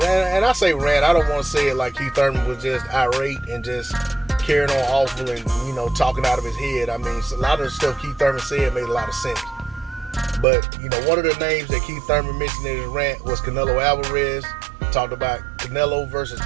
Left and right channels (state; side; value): drops out; left; at 10.5 s